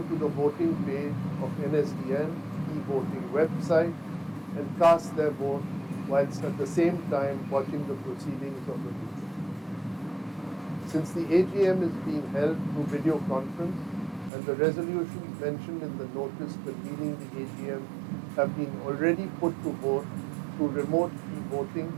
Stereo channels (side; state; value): left; drops out; at 14.3 s